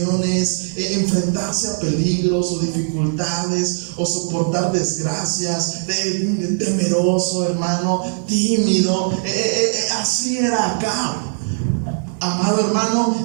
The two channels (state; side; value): silent; left; digital silence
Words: enfrentarse a peligros o dificultades o soportar desgracias, temeroso, hermano, tímido. Así era Acab, amado